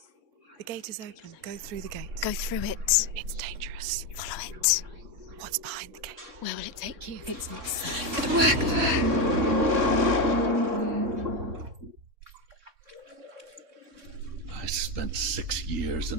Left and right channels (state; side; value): late; left; 3.6 ms